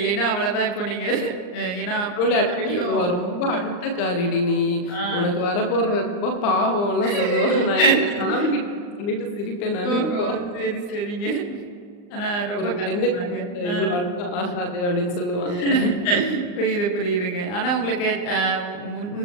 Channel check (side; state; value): right; late; 39 ms